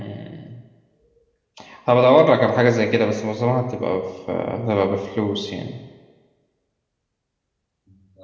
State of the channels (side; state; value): both; identical; correlation 1.00